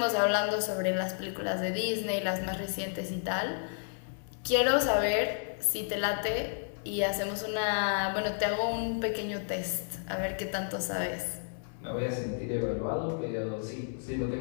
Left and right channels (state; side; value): silent; right; digital silence